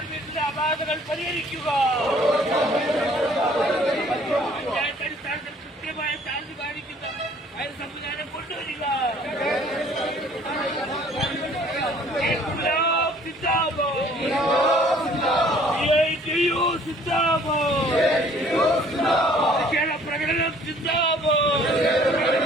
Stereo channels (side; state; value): both; normal; correlation 0.56